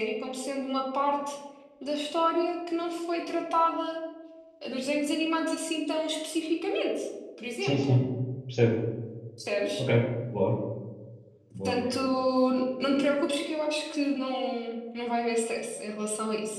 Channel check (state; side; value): identical; both; correlation 1.00